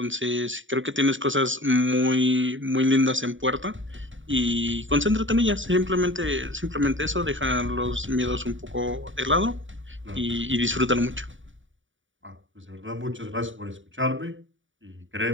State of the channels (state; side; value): late; left; 0.56 ms